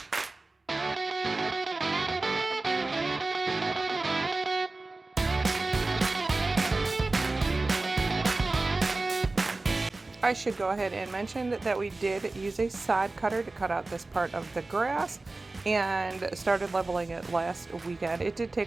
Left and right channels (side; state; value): left; quieter; 3.3 dB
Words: I should go ahead and mention that we did use a sod cutter to cut out this part of the grass and started leveling it last weekend. It did